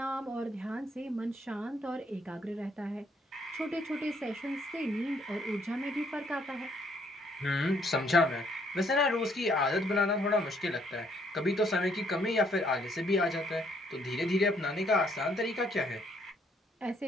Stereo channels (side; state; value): both; normal; correlation 0.68